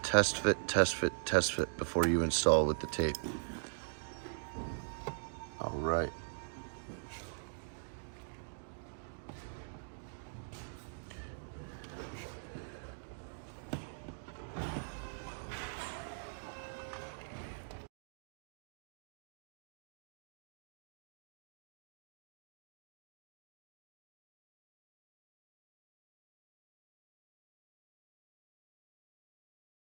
test fit before you install with the tape. All right.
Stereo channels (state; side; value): silent; left; digital silence